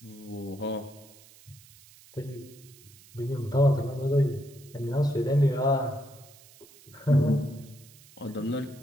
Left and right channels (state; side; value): noise; right; hiss, 24 dB below the sound